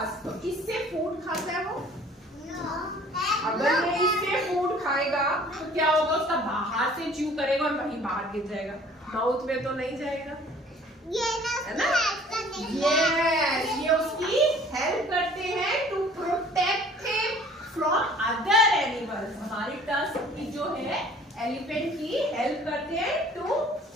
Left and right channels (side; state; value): both; normal; correlation 0.52